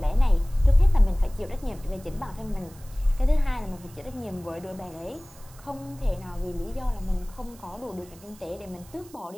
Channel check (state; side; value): noise; right; hiss, 23 dB below the sound